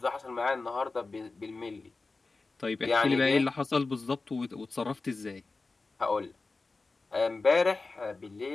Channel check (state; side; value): quieter; right; 3.7 dB